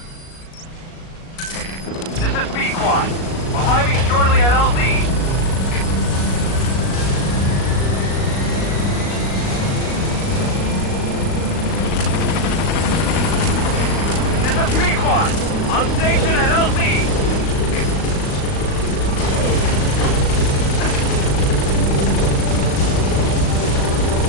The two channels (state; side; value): late; right; 37 ms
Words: Arriving shortly at LZ. This is Pequod, on station at LZ.